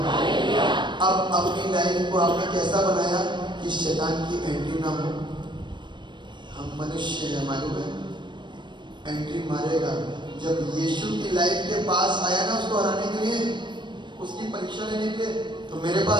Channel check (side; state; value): left; late; 0.22 ms